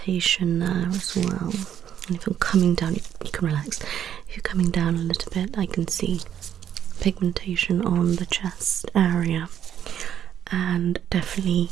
there as well. And if you're coming down, you can relax. If you're coming down a little bit, I can see pigmentation on the chest area, and definitely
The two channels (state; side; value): quieter; left; 9.6 dB